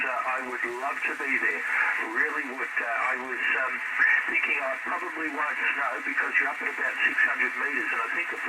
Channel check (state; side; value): identical; both; correlation 1.00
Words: I would love to be there, really would. I was thinking I probably won't snow because you're up at about 600 metres, and I think the